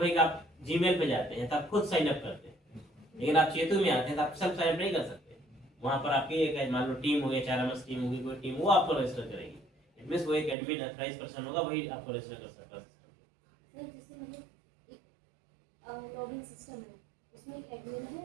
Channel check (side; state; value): left; drops out; at 10.6 s